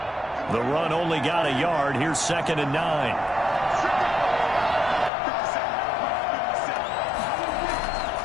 The run only got a yard. Here's 2nd and 9.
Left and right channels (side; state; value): right; drops out; at 5.1 s